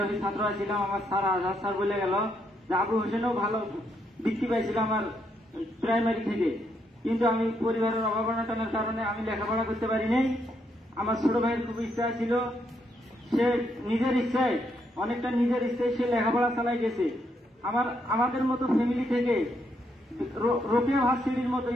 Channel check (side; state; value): both; normal; correlation 0.76